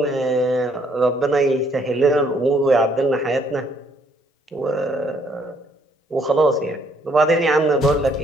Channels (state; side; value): normal; both; correlation 0.67